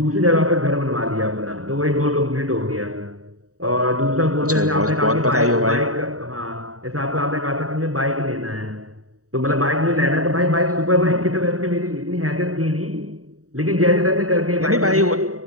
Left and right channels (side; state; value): left; late; 0.66 ms